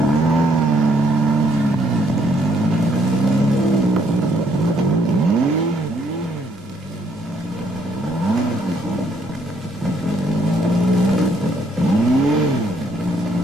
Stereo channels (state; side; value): normal; both; correlation 0.69